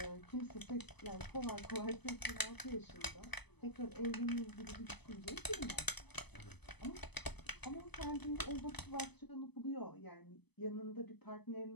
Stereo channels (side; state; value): right; late; 0.99 ms